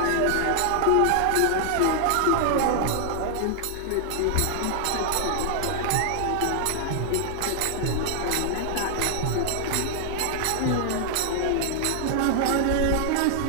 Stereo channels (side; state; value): both; different; correlation 0.00